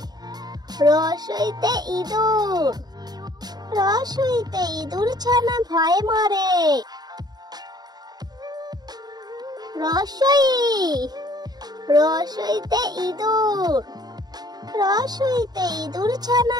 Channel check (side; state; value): left; late; 0.20 ms